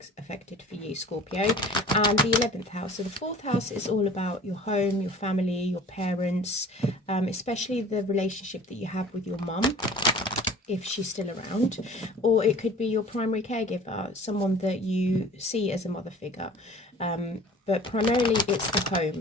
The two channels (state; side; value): normal; both; correlation 0.45